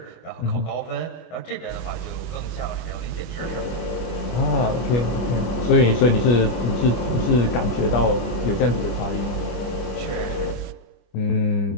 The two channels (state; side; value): late; right; 25 ms